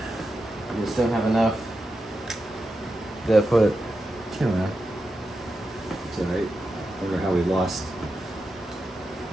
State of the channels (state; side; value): normal; both; correlation 0.89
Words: We just don't have enough. Gotta put two in. It's alright. Wonder how we lost.